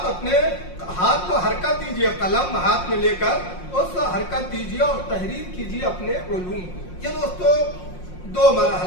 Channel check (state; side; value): late; right; 5.6 ms